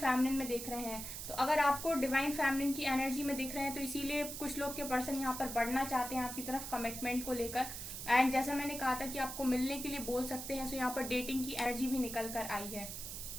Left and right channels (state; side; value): noise; right; hiss, 7 dB below the sound